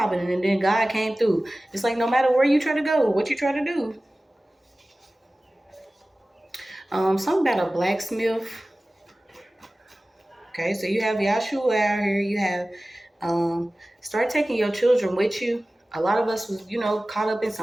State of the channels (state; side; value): normal; both; correlation 0.97